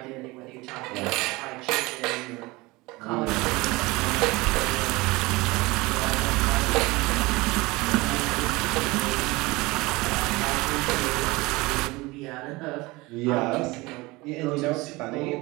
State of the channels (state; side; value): quieter; left; 22.4 dB